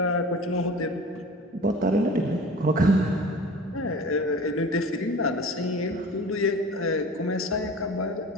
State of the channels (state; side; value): normal; both; correlation 0.39